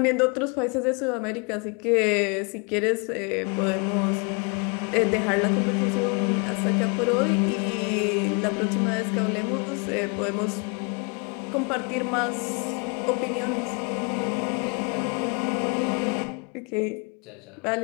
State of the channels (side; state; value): right; quieter; 33.5 dB